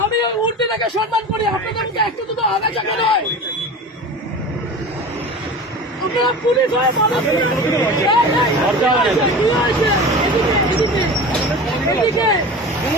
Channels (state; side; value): normal; both; correlation 0.33